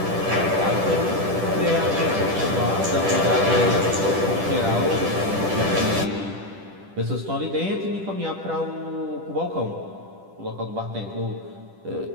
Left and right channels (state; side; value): late; left; 10 ms